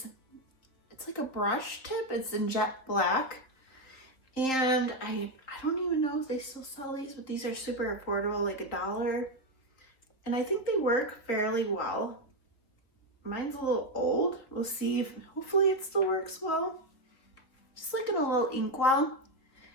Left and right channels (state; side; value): late; right; 3.6 ms